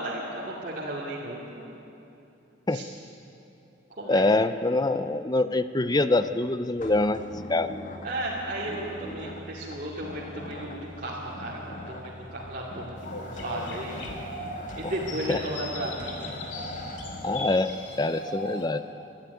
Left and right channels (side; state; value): both; normal; correlation 0.47